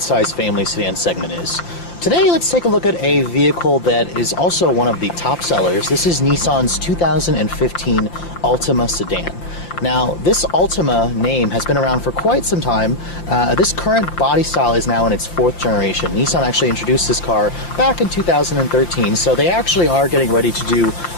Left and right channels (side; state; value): right; late; 5.8 ms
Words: family sedan segment is. Today, let's take a look at a vehicle that is also one of the top sellers. This is Nissan's 2015 Altima sedan. Now, this Altima name has been around for quite some time. This current body style is now in its 4th generation. Nissan actually introduced this car back in 2013, so they actually are getting ready to do